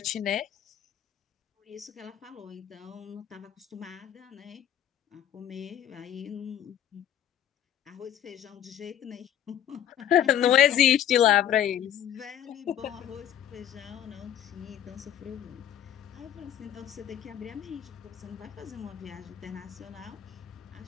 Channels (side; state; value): right; quieter; 10.5 dB